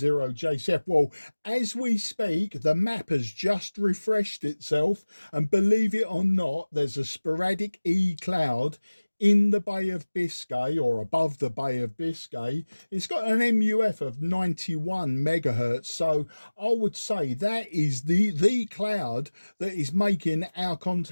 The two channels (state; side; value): inverted; both; correlation -1.00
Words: Well, as we speak, the map has just refreshed itself, and believe it or not, there's a sporadic E cloud in the Bay of Biscay, or above the Bay of Biscay. It's got an MUF of 91 megahertz. So I would say that is the cloud that is making our